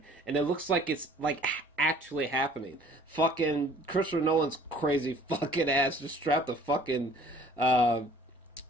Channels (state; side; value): normal; both; correlation 0.53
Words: and it looks like it's like actually happening. Fucking Christopher Nolan's crazy fucking ass just strapped a fucking